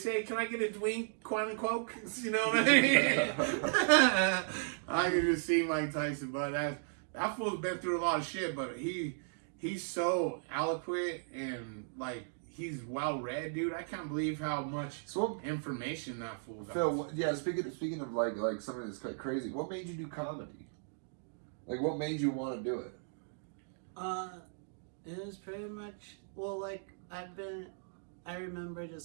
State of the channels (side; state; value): left; silent; digital silence